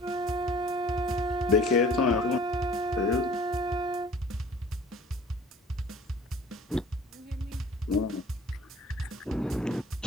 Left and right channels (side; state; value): both; normal; correlation 0.49